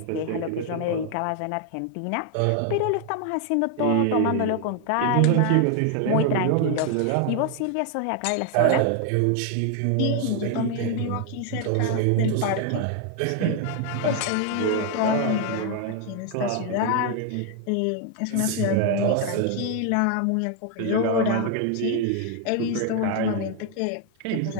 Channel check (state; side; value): different; both; correlation 0.00